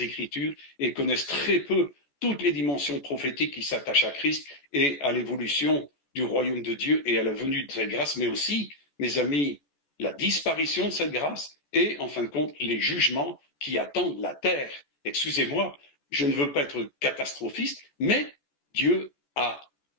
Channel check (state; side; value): late; right; 14 ms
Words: Écritures et connaissent très peu toutes les dimensions prophétiques qui s'attachent à Christ et à l'évolution du royaume de Dieu et à la venue de cette grâce, mais aussi, mes amis, la disparition de cette grâce et, en fin de compte, les jugements qui attendent la terre. Excusez-moi, je ne veux pas être catastrophiste, mais Dieu a,